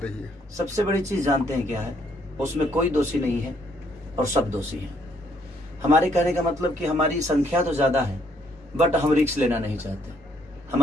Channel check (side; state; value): both; normal; correlation 0.69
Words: है? सबसे बड़ी चीज़ जानते हैं क्या है? उसमें कोई दोषी नहीं है और सब दोषी हैं। हमारे कहने का मतलब कि हमारी संख्या तो ज़्यादा है बट हम रिस्क लेना नहीं चाहते।